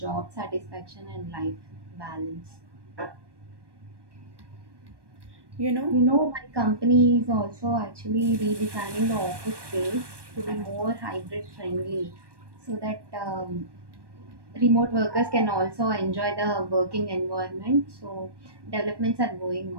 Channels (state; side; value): late; left; 1.2 ms